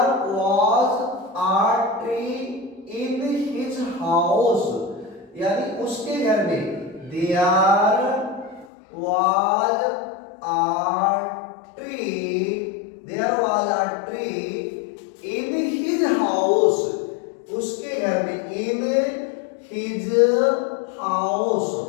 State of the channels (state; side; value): drops out; right; at 8.7 s